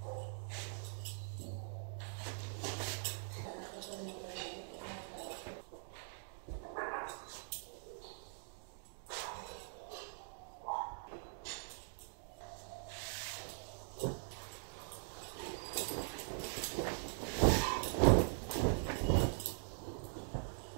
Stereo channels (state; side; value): silent; left; digital silence